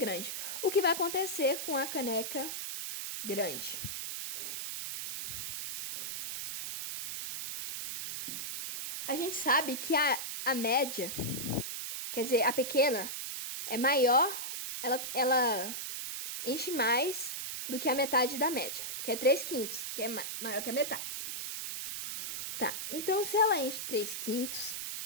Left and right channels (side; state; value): right; noise; hiss, 5 dB below the sound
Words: O que vai acontecer com a caneca grande? A gente sabe que a média, quer dizer, a pequena, é maior, ela enche mais do que a metade da média, que é 3/5, que é maior que a metade. Tá, então se ela enche 3/5,